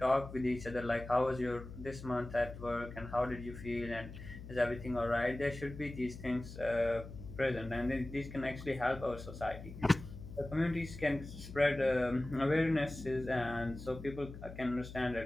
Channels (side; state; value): left; noise; hum, 12 dB below the sound